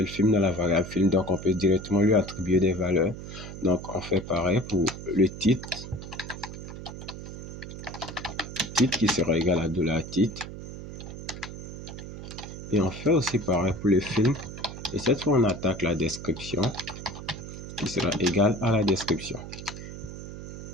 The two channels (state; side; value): noise; right; hum, 10 dB below the sound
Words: film dans la variable film, donc on peut directement lui attribuer des valeurs. Donc on fait pareil pour le titre qui sera égal à $titre. Et on fait aussi pareil pour le film. Et cette fois, on attaque la description qui sera égale à la description.